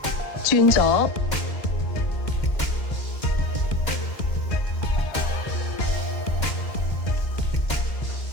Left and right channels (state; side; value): late; right; 2.1 ms